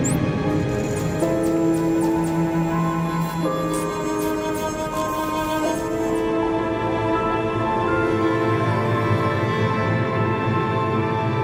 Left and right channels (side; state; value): both; identical; correlation 1.00